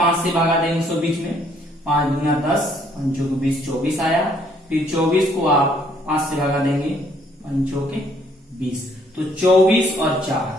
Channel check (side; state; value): both; normal; correlation 0.65